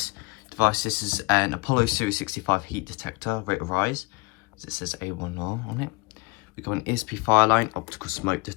device. This is an Apollo Series 65 heat detector, rate of rise, as it says A1R on it. We've got an ESP fire line optical smoke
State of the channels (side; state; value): right; quieter; 26.1 dB